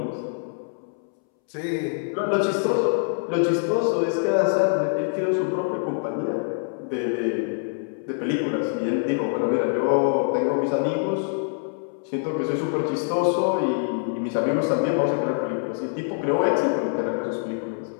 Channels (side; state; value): right; silent; 62 dB below the other